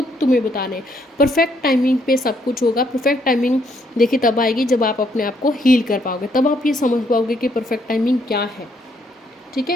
तुम्हें बता रहे हैं। परफेक्ट टाइमिंग पे सब कुछ होगा। परफेक्ट टाइमिंग देखिए तब आएगी जब आप अपने आप को हील कर पाओगे, तब आप ये समझ पाओगे कि परफेक्ट टाइमिंग क्या है, ठीक है।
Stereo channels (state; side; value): normal; both; correlation 0.71